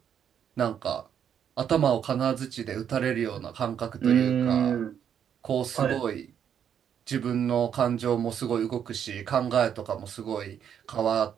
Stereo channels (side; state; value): left; quieter; 8.6 dB